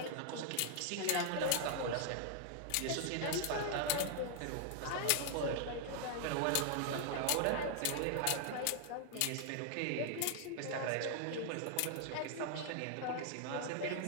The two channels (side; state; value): both; different; correlation 0.00